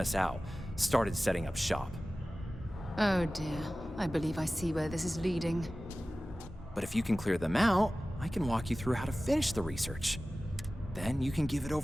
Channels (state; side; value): normal; both; correlation 0.96